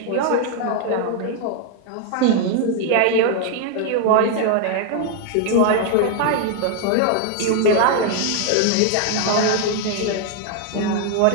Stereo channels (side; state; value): both; different; correlation 0.00